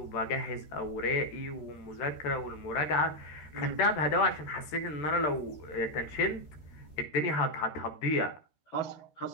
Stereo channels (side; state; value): right; late; 13 ms